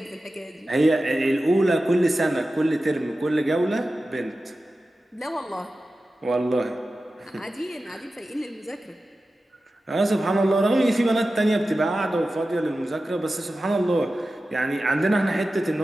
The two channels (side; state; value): both; normal; correlation 0.94